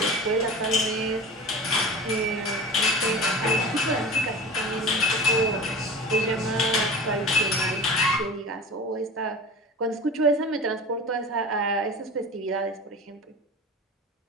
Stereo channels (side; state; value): both; normal; correlation 0.33